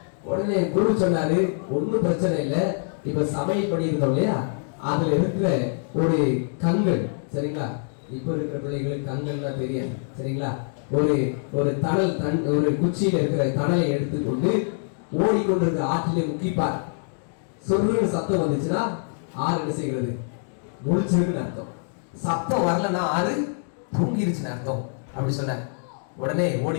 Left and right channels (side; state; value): right; silent; digital silence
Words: உடனே குரு சொன்னாரு, ஒன்னும் பிரச்சனை இல்லை. இப்ப சமையல் பண்ணியிருந்தோம் இல்லையா, அதுல இருக்கிற ஒரு கண்கள், சரிங்களா? இப்ப இருக்கிற பிள்ளைகளுக்கு கண்கள்னா தெரியாது, சரிங்களா? ஒரு தணல் ஒரு குச்சியில இருக்கிற தணலை எடுத்துக்கொண்டு ஓடிக்கொண்டிருக்கிற ஆற்றிலே முக்கிப்பார். சொல்லுன்னு சத்தம் வந்துச்சுன்னா ஆறு என்ன செய்கிறது? முழிச்சிருக்குன்னு அர்த்தம். சத்தம் வரலன்னா ஆறு தூங்கிருச்சுன்னு அர்த்தம் அப்படி சொன்ன. உடனே ஓடி